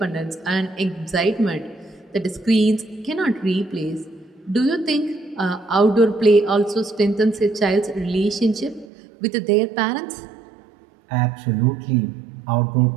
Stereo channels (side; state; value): left; drops out; at 8.8 s